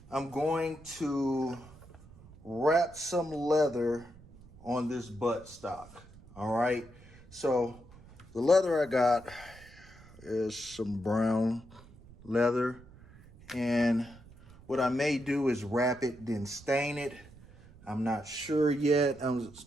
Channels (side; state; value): right; noise; rumble, 22 dB below the sound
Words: I'm going to wrap some leather on this buttstock. All right, so the leather I got is some brown leather, and what I may do is wrap it, then stain it. I'm not sure yet. I'm